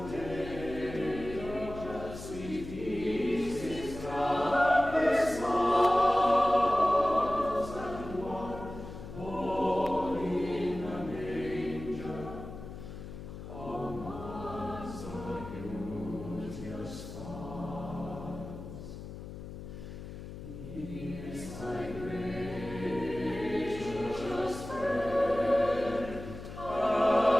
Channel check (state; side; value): noise; left; hum, 11 dB below the sound